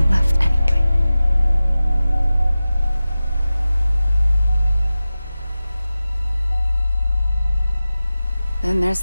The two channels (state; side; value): inverted; both; correlation -0.95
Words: left anyway. Then there's